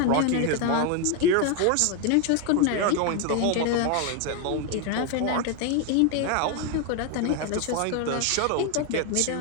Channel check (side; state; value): both; different; correlation 0.01